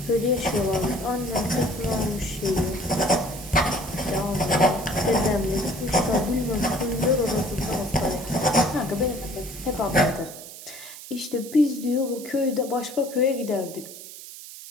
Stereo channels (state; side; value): noise; right; hiss, 14 dB below the sound